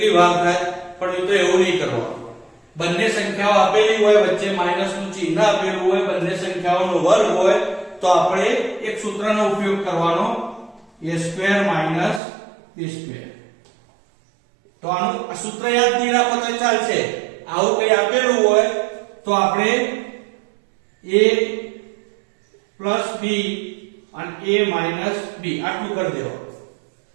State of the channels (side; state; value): left; drops out; at 12.2 s